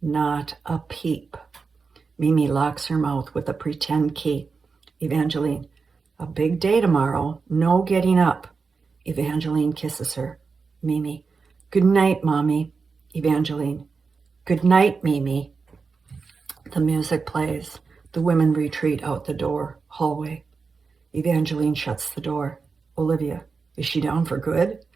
a peep. Mimi locks her mouth with a pretend key. Evangeline, a big day tomorrow, no getting up. Evangeline kisses her. Mimi, good night, Mommy. Evangeline, good night, Mimi. The music plays. The women retreat out the door, hallway. Evangeline shuts the door. Olivia, is she down for good?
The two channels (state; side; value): quieter; left; 4.8 dB